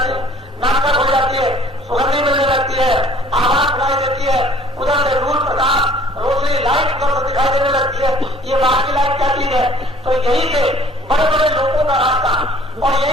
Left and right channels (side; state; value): both; normal; correlation 0.54